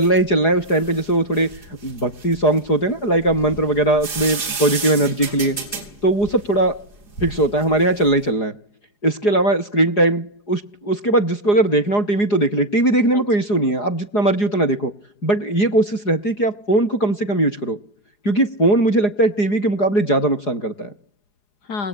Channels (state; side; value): late; right; 4.8 ms